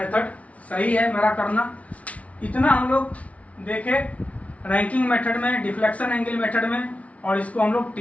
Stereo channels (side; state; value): right; late; 0.066 ms